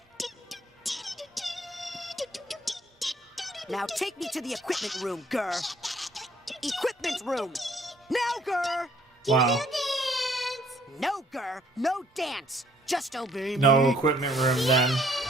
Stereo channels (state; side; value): normal; both; correlation 0.62